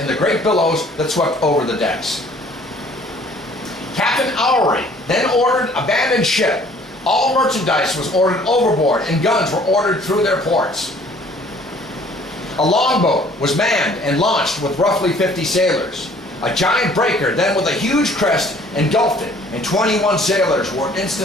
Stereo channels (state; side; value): normal; both; correlation 0.55